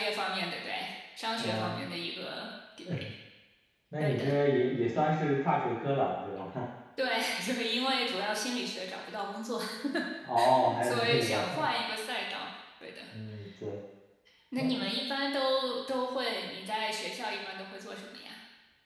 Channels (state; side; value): identical; both; correlation 1.00